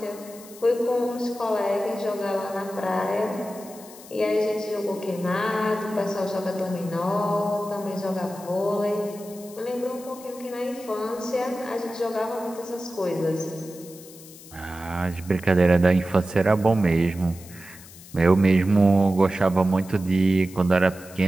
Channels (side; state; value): left; noise; hiss, 19 dB below the sound